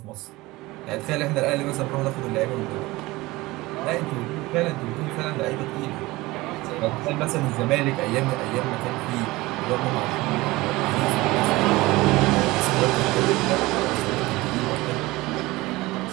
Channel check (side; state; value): left; quieter; 20.4 dB